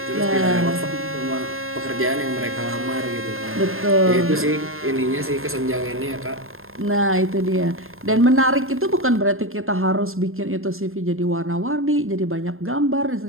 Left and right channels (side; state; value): left; late; 0.61 ms